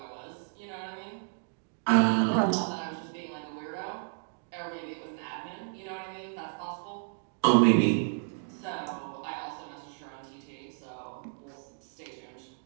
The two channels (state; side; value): silent; left; digital silence